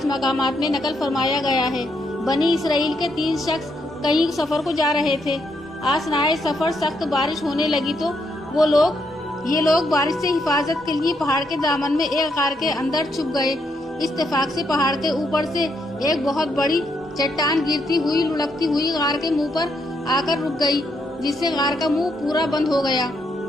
मकामात में नकल फरमाया गया है। बनी इसराइल के 3 शख्स कहीं सफर को जा रहे थे। आसनाए सफर सख्त बारिश होने लगी तो ये लोग बारिश से हिफाजत के लिए पहाड़ के दामन में एक गार के अंदर छुप गए। इत्तेफाक से पहाड़ के ऊपर से एक बहुत बड़ी चट्टान गिरती हुई लुढ़कती हुई गार के मुंह पर आकर रुक गई, जिससे गार का मुंह पूरा बंद हो गया।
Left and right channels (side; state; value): both; normal; correlation 0.77